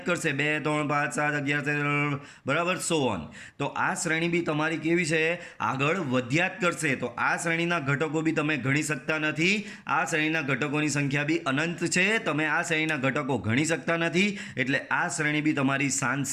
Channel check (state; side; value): identical; both; correlation 1.00